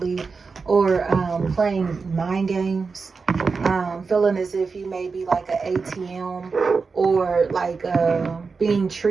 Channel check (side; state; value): left; quieter; 4.7 dB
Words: or playing mind games. Feeling as if you may be like an ATM, or like being